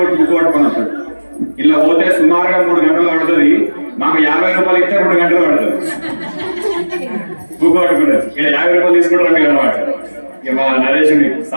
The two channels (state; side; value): inverted; both; correlation -1.00